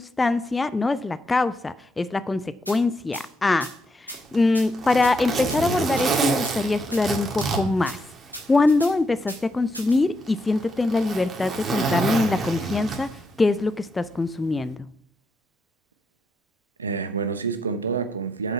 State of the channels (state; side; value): normal; both; correlation 0.80